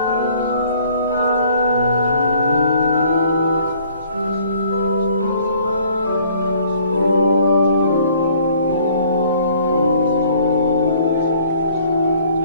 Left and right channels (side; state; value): both; inverted; correlation -0.58